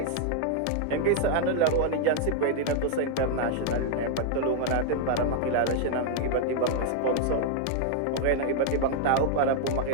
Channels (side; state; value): both; different; correlation 0.00